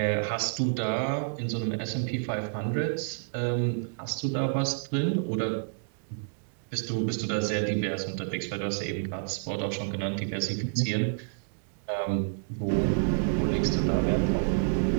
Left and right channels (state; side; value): silent; left; 58 dB below the other